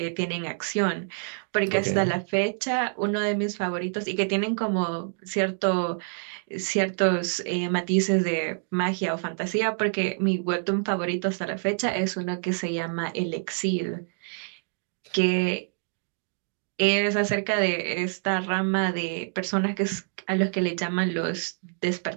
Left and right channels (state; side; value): silent; left; digital silence